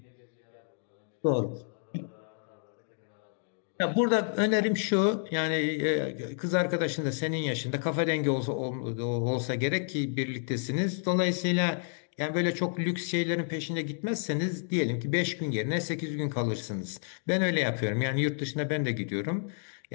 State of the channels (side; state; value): right; silent; 58 dB below the other